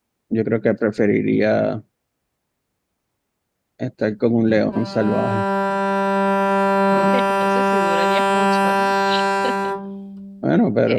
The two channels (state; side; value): identical; both; correlation 1.00